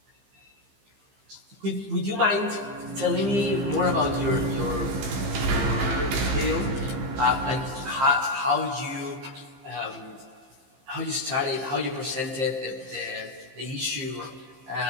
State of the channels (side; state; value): left; late; 15 ms